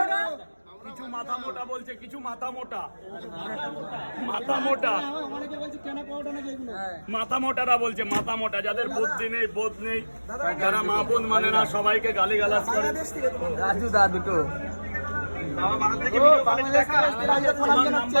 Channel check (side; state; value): both; inverted; correlation -1.00